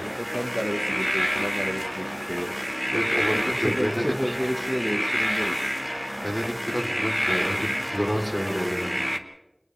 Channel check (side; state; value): both; identical; correlation 1.00